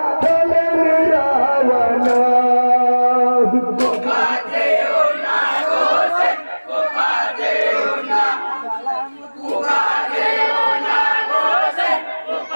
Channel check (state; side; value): inverted; both; correlation -1.00